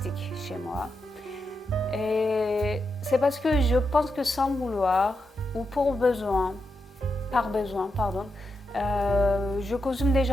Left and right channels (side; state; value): both; normal; correlation 0.85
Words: chez moi. Et c'est parce que je pense que sans vouloir, ou par besoin, je consomme